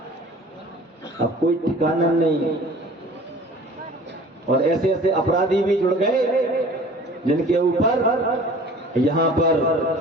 अब कोई ठिकाना नहीं। और ऐसे ऐसे अपराधी भी जुड़ गए जिनके ऊपर यहां पर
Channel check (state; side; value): normal; both; correlation 0.46